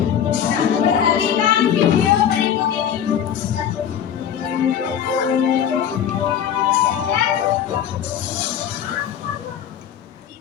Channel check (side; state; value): right; quieter; 9.1 dB